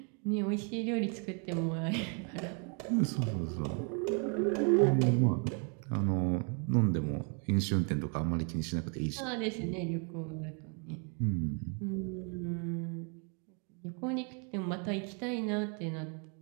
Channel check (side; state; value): left; quieter; 39.0 dB